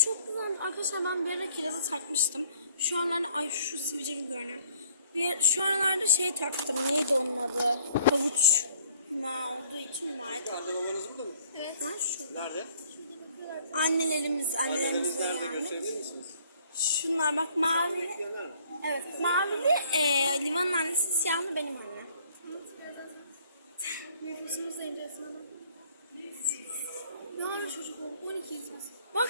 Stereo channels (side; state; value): both; inverted; correlation -0.59